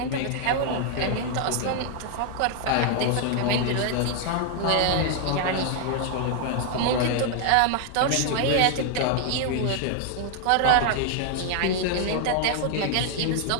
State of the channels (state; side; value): different; both; correlation 0.00